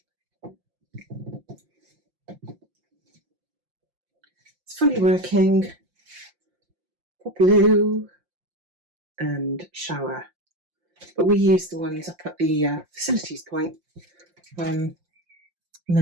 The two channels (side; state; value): left; late; 5.7 ms